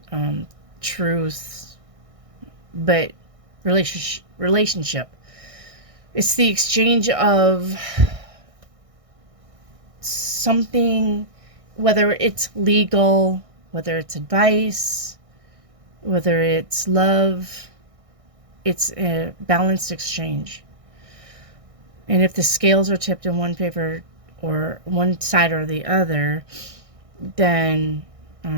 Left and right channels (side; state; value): left; late; 1.6 ms